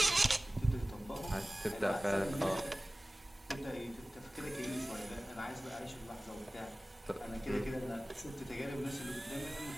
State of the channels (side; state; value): both; normal; correlation 0.98